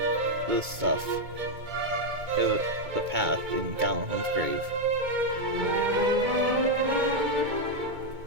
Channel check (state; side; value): late; left; 2.2 ms